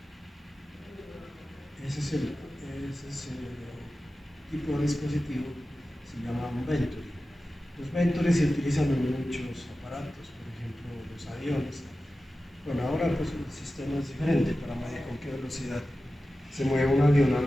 Ese es el tipo de dispositivo, se llama un Venturi. Los Venturi se utilizan en muchos aparatos, por ejemplo los aviones. Bueno, ahora pues el sistema es diferente para medir con qué velocidad se mueve un avión.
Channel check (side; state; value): both; normal; correlation 0.94